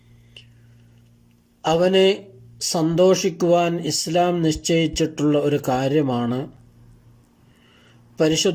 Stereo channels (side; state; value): both; identical; correlation 1.00